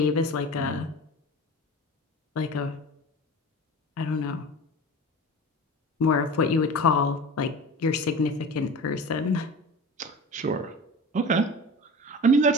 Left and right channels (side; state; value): both; normal; correlation 0.34